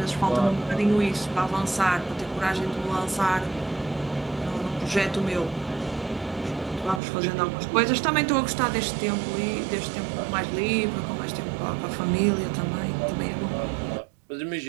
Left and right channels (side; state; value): left; drops out; at 7.0 s